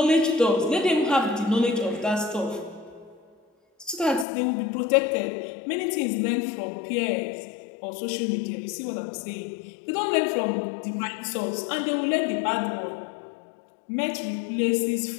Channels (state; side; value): drops out; right; at 4.2 s